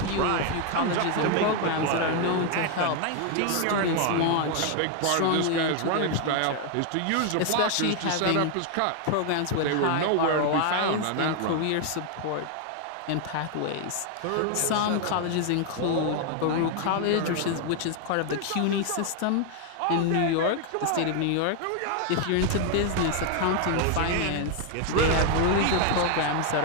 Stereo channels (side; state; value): both; different; correlation 0.00